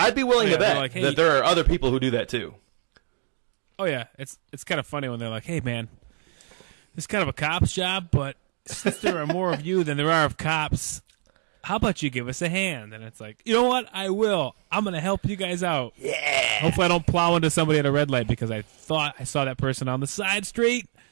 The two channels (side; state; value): left; silent; 55 dB below the other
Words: be willing to bet like, hey, that there are other people who do that too. Oh yeah, it's kind of funny when they're like, "Hey man, this is kind of a cop's job, but since there are more of you than there are of cops, how about you give us a hand?" And it's like, you know what? I will. I'm going to help you guys out. Yeah. Hopefully I don't plow into somebody at a red light because I thought I saw that person on the side street.